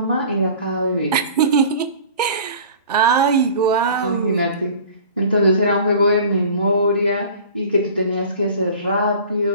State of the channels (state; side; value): inverted; both; correlation -0.44